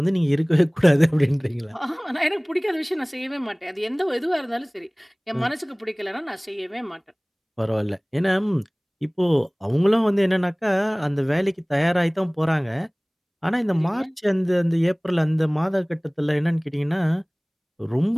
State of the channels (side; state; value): both; identical; correlation 1.00